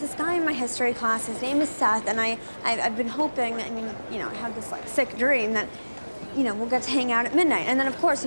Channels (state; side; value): inverted; both; correlation -1.00